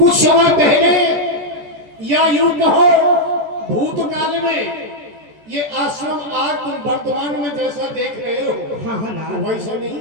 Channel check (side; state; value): left; late; 14 ms